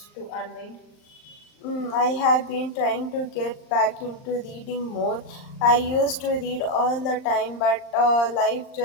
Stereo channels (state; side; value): late; right; 39 ms